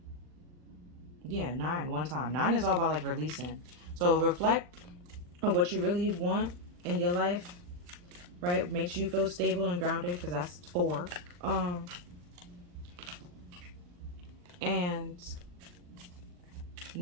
Yeah, 9 one time. 9 is all about like releasing. So reflect on what you really want in your life, right? Makes you feel stable and grounded, because that's 4. And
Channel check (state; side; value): late; left; 40 ms